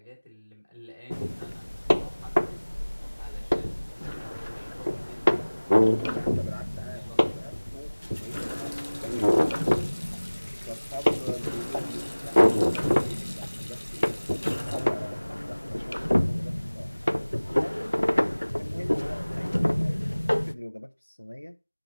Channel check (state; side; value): inverted; both; correlation -1.00